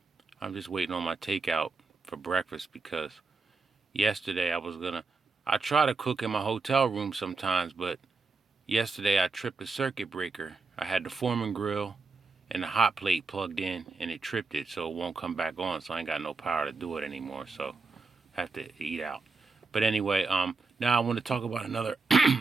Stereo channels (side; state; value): left; quieter; 4.0 dB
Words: I'm just waiting on my takeout for breakfast because yesterday I try to cook in my hotel room sometimes, but yesterday I tripped a circuit breaker. I had the Foreman grill and the hot plate plugged in and it tripped it so it won't come back on, so I ain't got no power to do it anymore, so I have to eat out. But anyway, now I want to talk about another